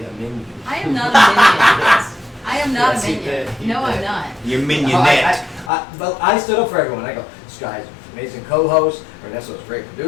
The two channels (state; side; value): drops out; right; at 5.7 s